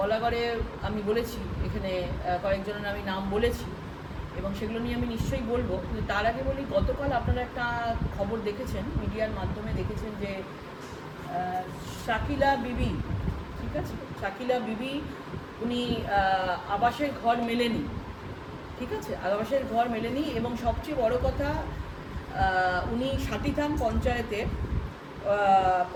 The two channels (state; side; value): identical; both; correlation 1.00